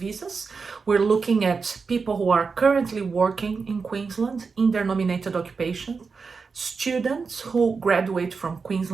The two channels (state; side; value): quieter; left; 4.9 dB